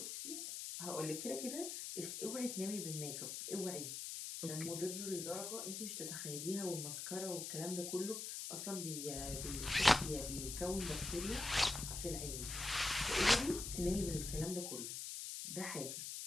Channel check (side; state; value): left; noise; hiss, 5 dB below the sound